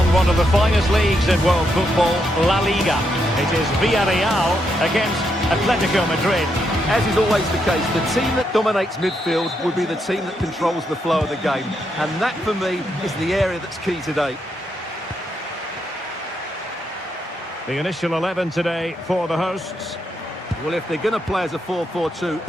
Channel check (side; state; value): both; normal; correlation 0.80